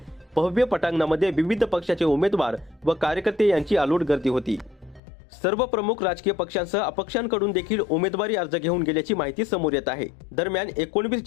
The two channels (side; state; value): right; drops out; at 5.0 s